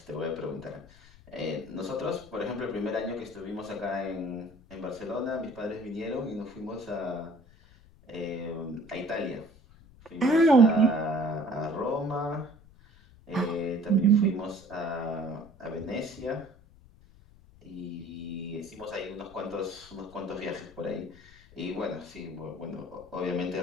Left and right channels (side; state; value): left; noise; rumble, 24 dB below the sound